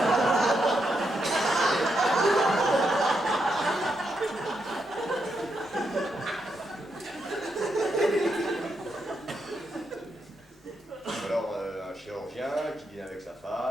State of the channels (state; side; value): normal; both; correlation 0.82